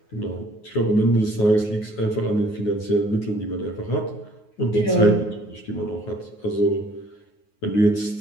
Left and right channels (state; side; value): late; right; 9.5 ms